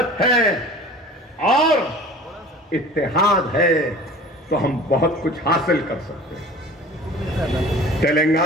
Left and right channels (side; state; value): both; normal; correlation 0.43